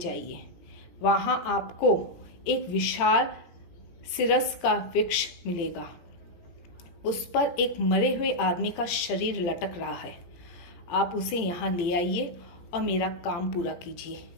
वहाँ आपको एक विशाल सिरस का वृक्ष मिलेगा। उस पर एक मरे हुए आदमी का शरीर लटक रहा है। आप उसे यहाँ ले आइए और मेरा काम पूरा कीजिए।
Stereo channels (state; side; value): late; right; 17 ms